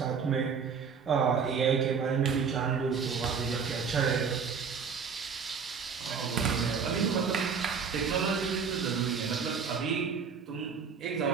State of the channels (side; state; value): left; quieter; 6.1 dB